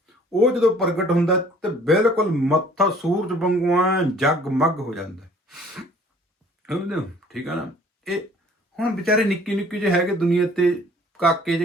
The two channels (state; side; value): normal; both; correlation 0.54